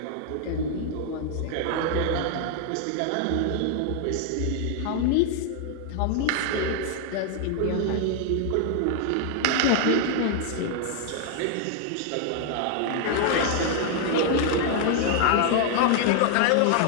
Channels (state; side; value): different; both; correlation 0.00